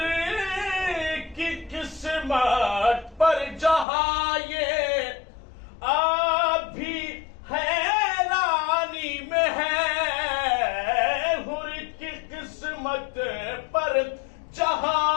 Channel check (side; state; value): right; drops out; at 3.9 s